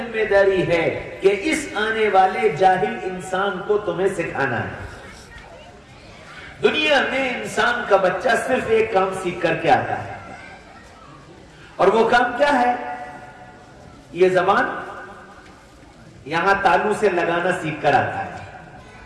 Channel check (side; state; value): both; identical; correlation 1.00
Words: داری ہے کہ اس آنے والے جاہل انسان کو تمہیں سکھانا ہے۔ دنیا میں انسان کا بچہ صرف ایک کام سیکھ کر کے آتا ہے، اور وہ کام کیا ہے؟ یہ زبان یہاں تالو سے لگانا سیکھ کر آتا ہے۔